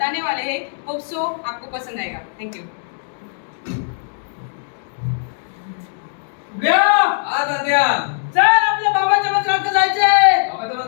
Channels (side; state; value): right; silent; digital silence